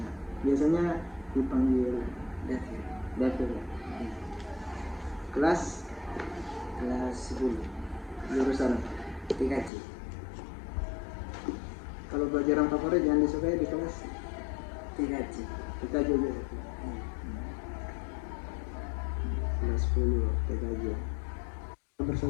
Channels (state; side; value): drops out; right; at 9.7 s